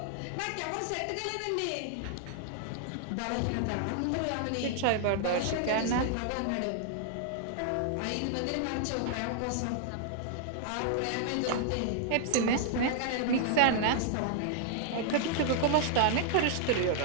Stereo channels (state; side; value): different; both; correlation -0.01